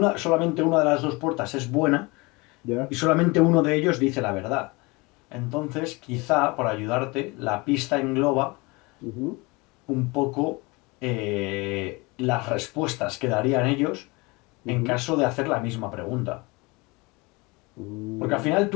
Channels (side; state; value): right; quieter; 25.5 dB